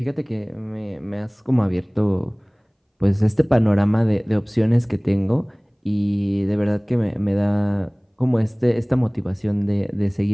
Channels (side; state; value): both; identical; correlation 1.00